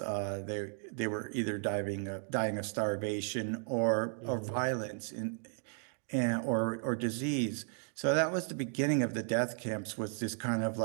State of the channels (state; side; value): silent; left; 55 dB below the other